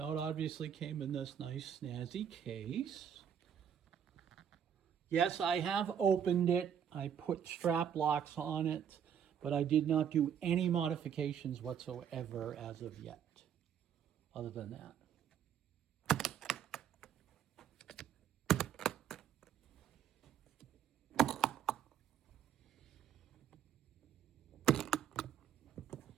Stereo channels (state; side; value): quieter; left; 8.6 dB